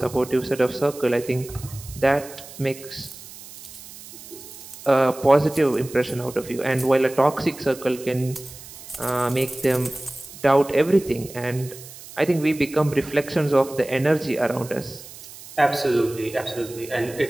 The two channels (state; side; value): noise; right; hiss, 16 dB below the sound